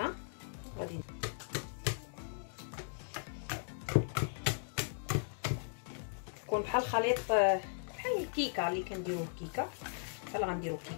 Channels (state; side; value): silent; right; digital silence